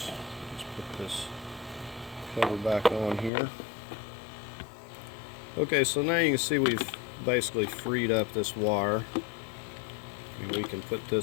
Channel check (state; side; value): drops out; right; at 3.3 s